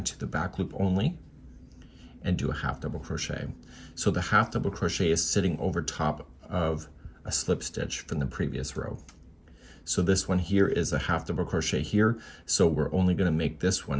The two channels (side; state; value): both; identical; correlation 1.00